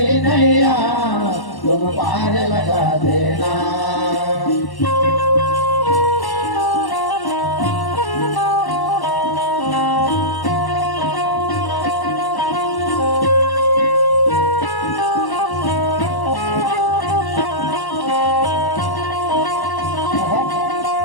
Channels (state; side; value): late; right; 1.1 ms